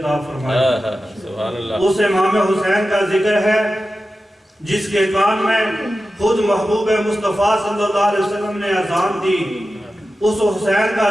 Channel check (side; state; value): both; normal; correlation 0.93